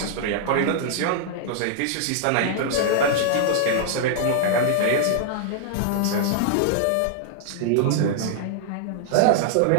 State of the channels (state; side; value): different; both; correlation -0.01